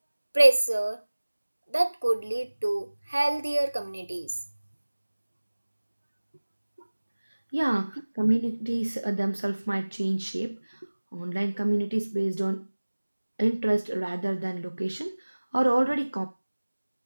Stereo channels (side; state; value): both; inverted; correlation -1.00